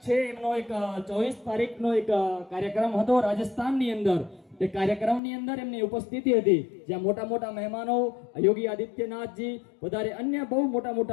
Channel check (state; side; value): drops out; right; at 5.2 s